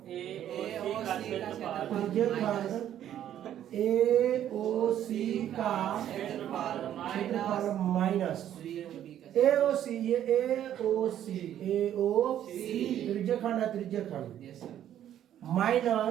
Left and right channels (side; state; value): left; quieter; 11.0 dB